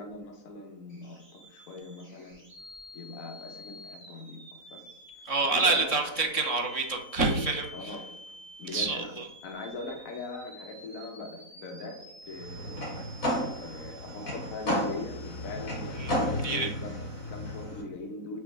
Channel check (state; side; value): late; right; 4.0 ms